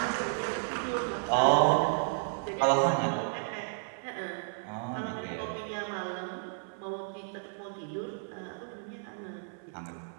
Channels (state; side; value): silent; left; 56 dB below the other